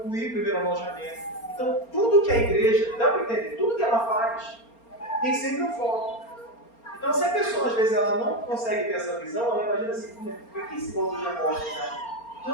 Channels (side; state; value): right; late; 4.3 ms